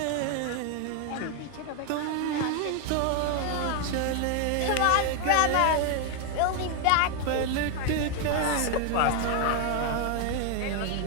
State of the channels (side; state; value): both; different; correlation 0.01